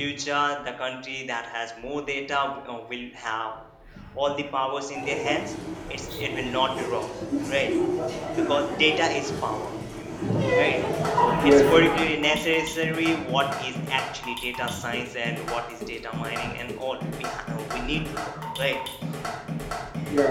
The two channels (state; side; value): identical; both; correlation 1.00